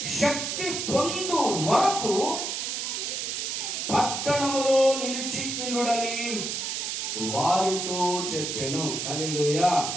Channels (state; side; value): noise; right; hiss, 3 dB below the sound